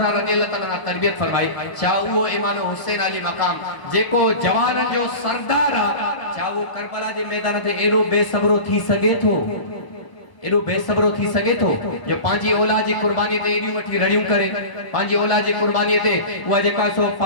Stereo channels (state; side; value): late; right; 1.0 ms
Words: रज़ियल्लाहु तआला तरबियत फरमाई चा वो इमाम हुसैन अली मकाम जेको जवानन जो सरदार आ चा वो करबला जे मैदान ते एरो बेसब्रो थी सके थो एडो बेसब्रो थी सके थो जो पांजी औलाद जी कुर्बानी ते एडी वठी रड़ियूं करे पांजी औलाद जी कुर्बानी ते उहा जेका सो